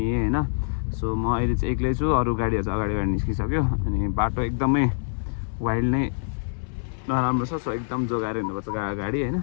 होइन। सो म अहिले चाहिँ एक्लै छु, अरू गाडीहरू चाहिँ अगाडि निस्किसक्यो। अनि बाटो एकदमै वाइल्ड नै नराम्रो छ। सो एकदम जोगाएर हिँड्नुपर्छ गाडी होइन।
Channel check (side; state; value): right; silent; digital silence